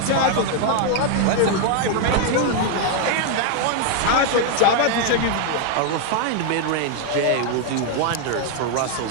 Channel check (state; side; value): different; both; correlation 0.00